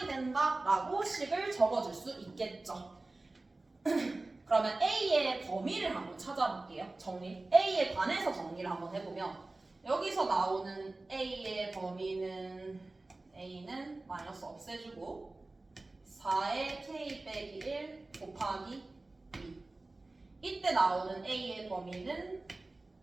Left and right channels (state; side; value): quieter; left; 3.1 dB